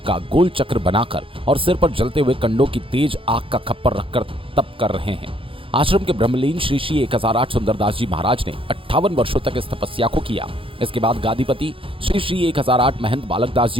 का गोल चक्र बनाकर और सिर पर जलते हुए कंडों की तेज आग का खप्पर रखकर तप कर रहे हैं। आश्रम के ब्रह्मलीन श्री श्री 1008 सुंदरदास जी महाराज ने 58 वर्षों तक इस तपस्या को किया। इसके बाद गादीपति श्री श्री 1008 महंत बालक दास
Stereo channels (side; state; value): left; late; 0.26 ms